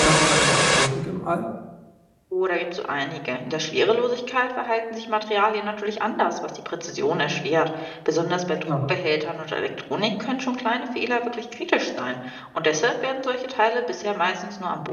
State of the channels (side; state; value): both; identical; correlation 1.00